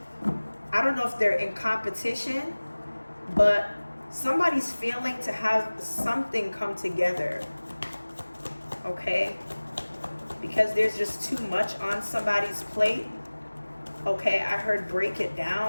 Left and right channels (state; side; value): inverted; both; correlation -1.00